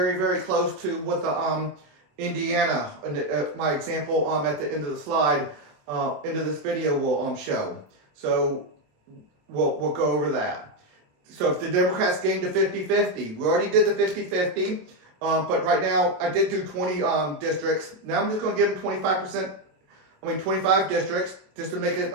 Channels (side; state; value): left; late; 27 ms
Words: very close to what the Indiana, my example at the end of the slide, end of this video will show. So we'll go over that. So if the Democrats gain to 50-50, we already did the 50-50, but right now I did do 20 districts. Now I'm just going to give them 25 districts, just to make it